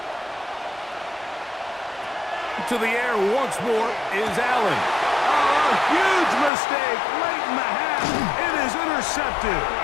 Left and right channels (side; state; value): right; drops out; at 6.5 s